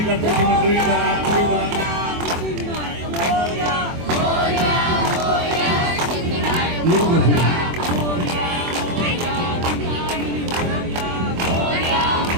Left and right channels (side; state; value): left; late; 24 ms